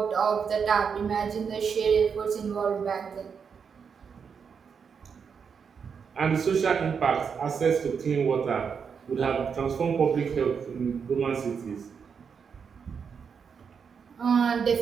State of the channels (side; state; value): left; quieter; 6.4 dB